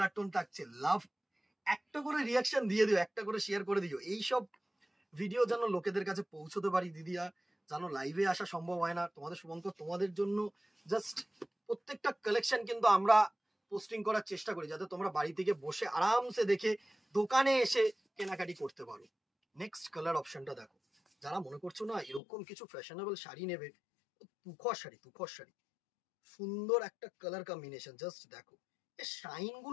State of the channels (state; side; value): drops out; right; at 22.2 s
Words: টোন থাকছে। লাভ, একটা করে রিয়াকশন দিয়ে দিও, একটা করে শেয়ার করে দিও, এইসব ভিডিও যেন লোকেদের কাছে পৌঁছতে পারি দিদিয়া, জানো লাইভে আসা সম্ভব হয় না তোমাদের শুভঙ্কর, তোমাদের জন্য জাস্ট প্রত্যেকটা কালেকশন কিন্তু আমরা পোস্টিং করার চেষ্টা করি, যাতে তোমরা বাড়ি থেকে বসে আরামসে দেখে দোকানে এসে কেনাকাটি করতে পারো। নেক্সট কালার অপশনটা দেখো, যারা মনে করছো না এরকম কিছু ফ্যাশনেবল শাড়ি নেবে, তুখর শাড়ি, তুখর শাড়ি, সুন্দর একটা কালার কম্বিনেশন, জাস্ট দেখো এর শাইন